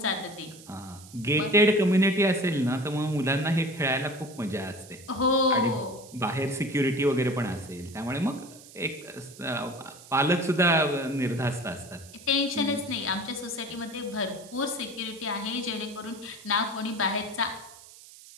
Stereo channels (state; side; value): noise; right; hiss, 20 dB below the sound